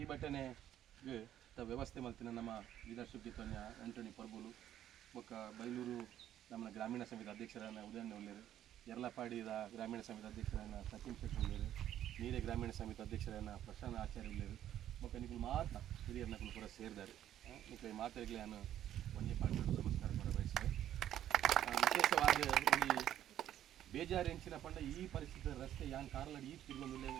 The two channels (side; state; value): left; quieter; 11.5 dB